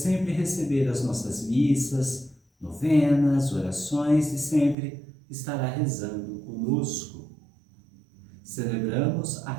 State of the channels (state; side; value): drops out; left; at 4.8 s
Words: receber as nossas missas, novenas, orações e sempre estará rezando conosco. Celebramos a